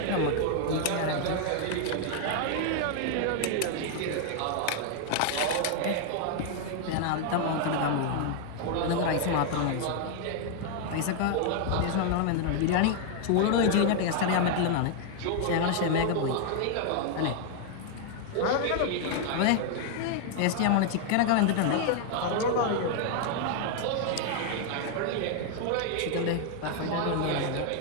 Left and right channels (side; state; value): both; different; correlation 0.00